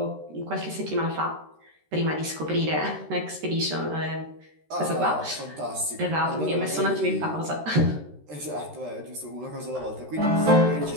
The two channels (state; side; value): late; left; 13 ms